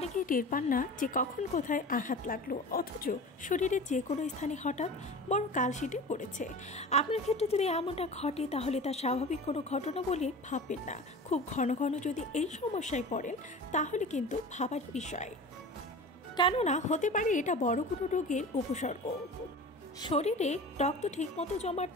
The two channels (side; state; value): both; normal; correlation 0.35